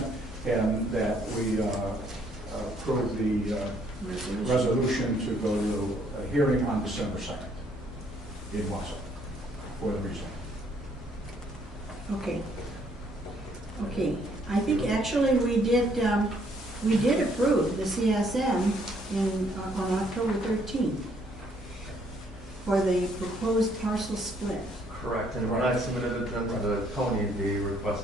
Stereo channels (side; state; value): both; normal; correlation 0.67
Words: and that we approve the resolution to go to a hearing on December 2nd in Wausau for the reason. Okay. Okay, I think actually we did approve the CSM on October 13th for the proposed parcel split. Correct, and when I submitted it then to the county, they